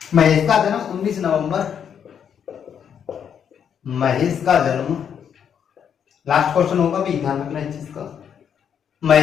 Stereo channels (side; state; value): right; quieter; 8.1 dB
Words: महेश का जन्म 19 नवंबर, महेश का जन्म, लास्ट क्वेश्चन होगा भी, ध्यान रखना इस चीज का।